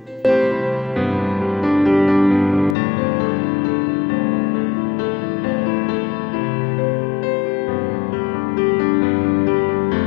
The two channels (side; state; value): right; drops out; at 2.8 s